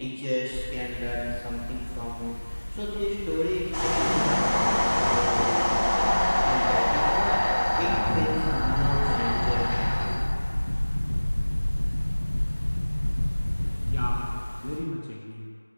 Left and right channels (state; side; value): inverted; both; correlation -1.00